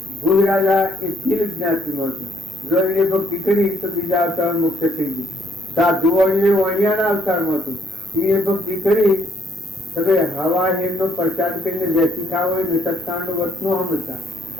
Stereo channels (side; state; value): both; normal; correlation 0.69